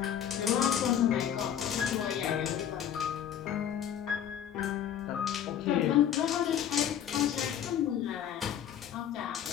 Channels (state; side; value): quieter; right; 9.7 dB